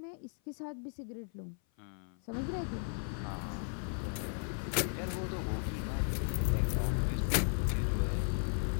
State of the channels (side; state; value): right; silent; 54 dB below the other